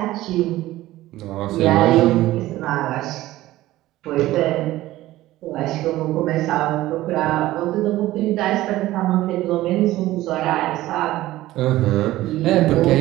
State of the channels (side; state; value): left; quieter; 16.1 dB